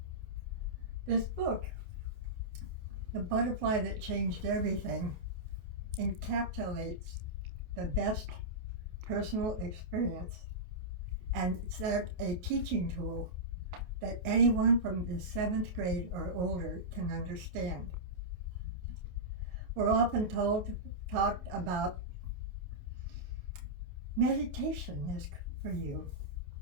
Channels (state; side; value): late; left; 28 ms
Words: This book, The Butterfly That Changed Everything, encapsulates the best personal experience, and it's a teaching tool that anyone from the 7th grade or older can understand. We're often talked about meditation is for you.